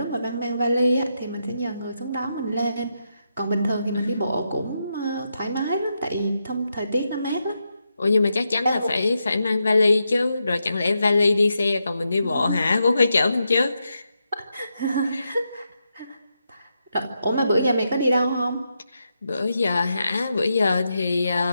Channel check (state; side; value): inverted; both; correlation -0.84